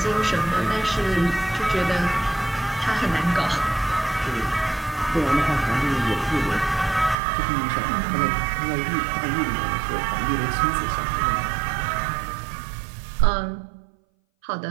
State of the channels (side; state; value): left; drops out; at 7.2 s